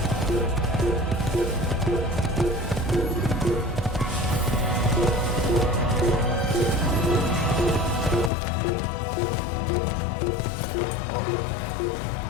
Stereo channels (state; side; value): drops out; right; at 8.3 s